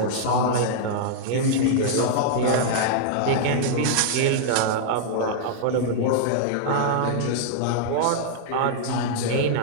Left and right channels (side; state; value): both; different; correlation -0.01